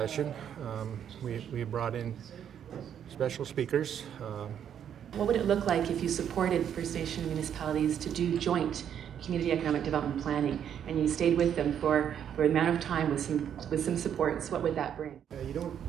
We brought in special speakers. What would it look like if you supported First Nation municipalities to do joint community economic development planning, and you stayed with them for an amount of time with some supports? What would that bring?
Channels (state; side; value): quieter; left; 9.0 dB